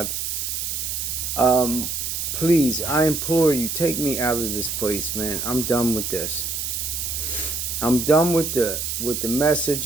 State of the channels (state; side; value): noise; right; hiss, 3 dB below the sound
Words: Please, I implore you, take me out of this place, man. I'm done with this. I'm done with the